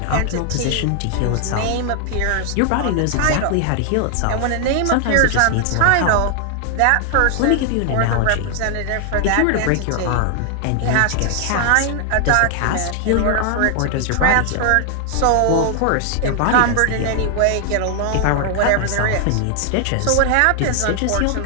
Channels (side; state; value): both; different; correlation 0.00